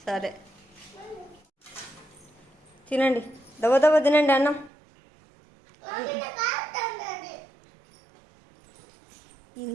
సరే తినండి, దవ దవ తినండి అన్నం.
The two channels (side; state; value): left; drops out; at 4.7 s